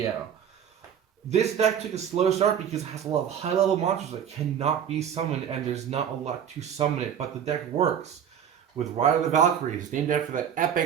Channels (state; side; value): quieter; left; 8.7 dB